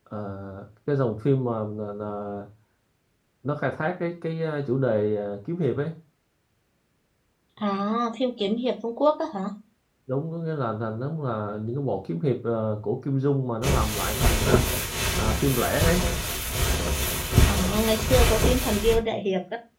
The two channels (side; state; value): both; identical; correlation 1.00